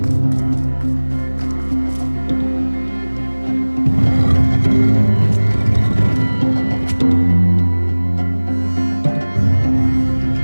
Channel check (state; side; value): inverted; both; correlation -1.00